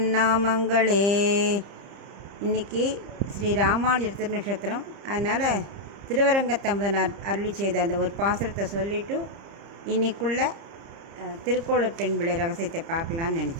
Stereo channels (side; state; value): left; late; 30 ms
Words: நாமங்களே. இன்றைக்கி ஸ்ரீ ராமானுஜர் திருநட்சத்திரம், அதனால் திருவரங்கத்தமுதனார் அருளி செய்த அந்த ஒரு பாசுரத்தை சொல்லிவிட்டு இன்றைக்குள்ள திருக்கோளூர் பெண்பிள்ளை ரகசியத்தை பார்க்கலான்னு